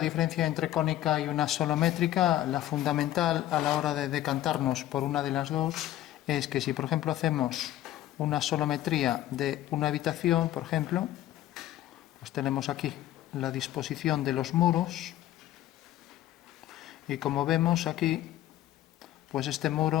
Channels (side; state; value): right; quieter; 13.6 dB